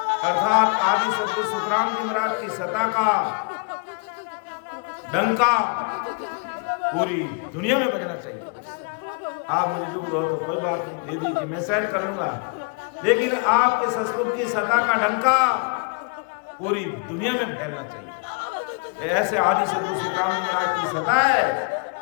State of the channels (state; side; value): quieter; right; 34.9 dB